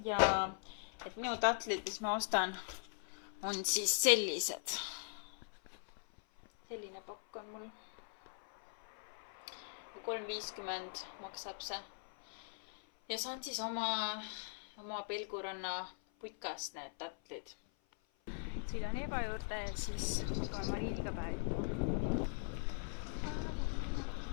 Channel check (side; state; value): right; silent; 51 dB below the other